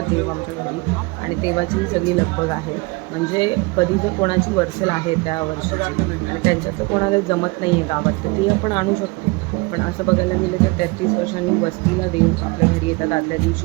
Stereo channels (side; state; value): left; quieter; 25.6 dB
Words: देव आमच्या घरी आणि तेव्हाची ही सगळी लगबग आहे. म्हणजे कधी जर कोणाची वर्सल आहे त्या वर्षाची आणि त्यांच्यात कोणाला जमत नाही आहे गावात तर ती आपण आणू शकतो. पण असं बघायला गेलं तर 33 वर्षांनी वस्तीला देव आपल्या घरी येतात. आदल्या